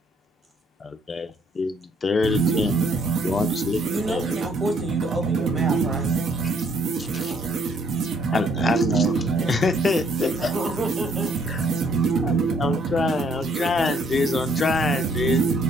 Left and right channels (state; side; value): normal; both; correlation 0.66